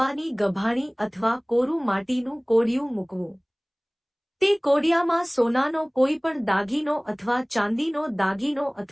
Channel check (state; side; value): identical; both; correlation 1.00